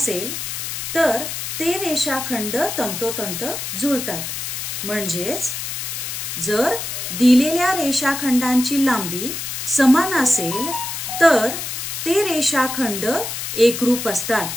तर ते रेषाखंड तंतोतंत जुळतात. म्हणजेच जर दिलेल्या रेषाखंडांची लांबी समान असेल तर ते रेषाखंड एकरूप असतात.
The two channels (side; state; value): left; noise; hiss, 5 dB below the sound